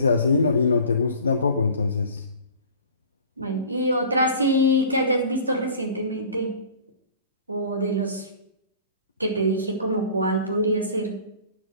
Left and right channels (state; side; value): inverted; both; correlation -0.44